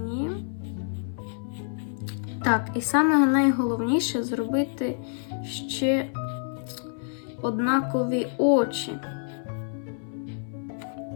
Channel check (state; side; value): silent; right; 60 dB below the other